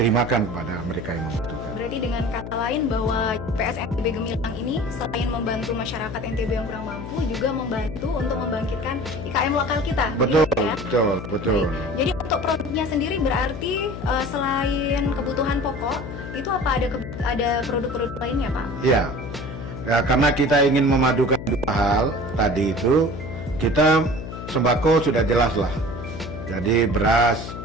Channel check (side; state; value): left; noise; hum, 9 dB below the sound